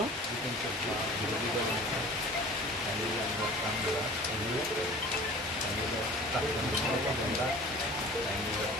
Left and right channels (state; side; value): normal; both; correlation 0.43